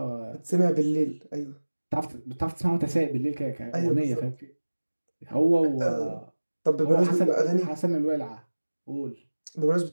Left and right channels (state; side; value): inverted; both; correlation -1.00